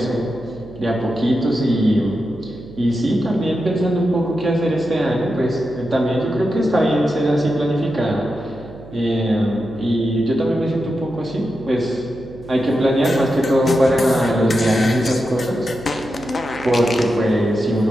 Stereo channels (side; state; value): right; noise; hum, 17 dB below the sound